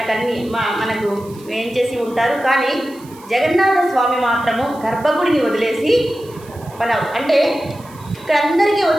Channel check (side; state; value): right; noise; hiss, 24 dB below the sound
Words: ఏం చేసి ఉంటారు. కానీ జగన్నాథ స్వామి మాత్రము గర్భగుడిని వదిలేసి అంటే ఇక్కడ అందరికీ